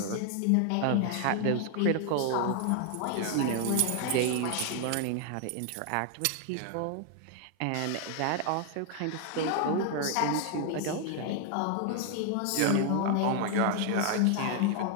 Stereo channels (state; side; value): different; both; correlation 0.00